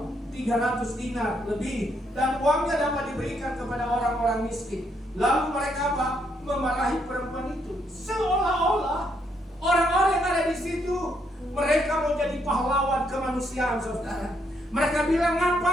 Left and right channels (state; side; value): normal; both; correlation 0.74